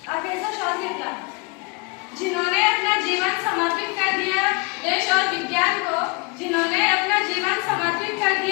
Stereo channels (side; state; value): right; quieter; 28.8 dB